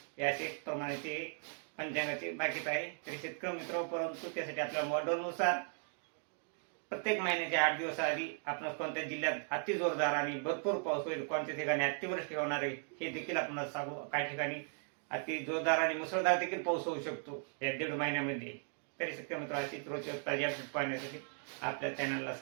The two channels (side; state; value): left; silent; 53 dB below the other